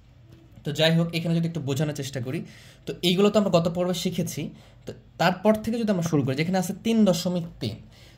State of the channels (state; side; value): identical; both; correlation 1.00